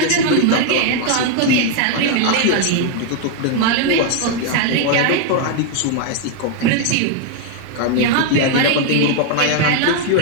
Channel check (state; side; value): different; both; correlation 0.01